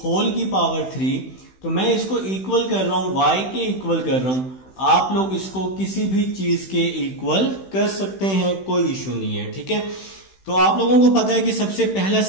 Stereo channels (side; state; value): right; late; 16 ms